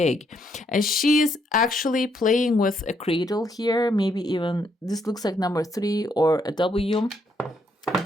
And she's actually playing with a cradle here. Maybe even this looks like number 3 or a W.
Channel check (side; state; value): both; normal; correlation 0.74